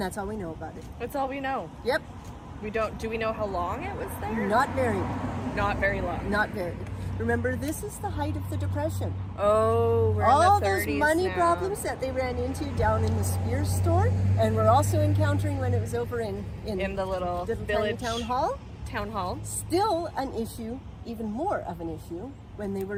all we know about it. That's all we know. Yep. Do we know how long it was there? Not very. Not very long. Not very. Remember, this is the height of the Depression. Oh, we're All in the 30s those money now. problems that they ran into down in the Spears store, and we're also encountering when it was over in the little tiny village town hall. Town hall. Still an issue, even more of an issue, when they were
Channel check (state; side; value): identical; both; correlation 1.00